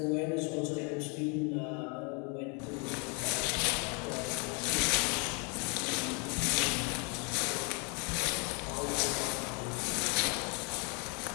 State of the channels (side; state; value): right; quieter; 34.9 dB